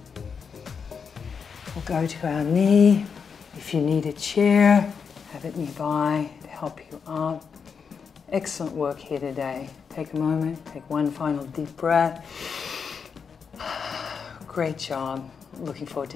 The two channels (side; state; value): right; quieter; 6.1 dB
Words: We'll go to our knee. If you need a chair, have it nearby to help you up. Excellent work here today. Take a moment, take one final deep breath. Great job. Looking forward to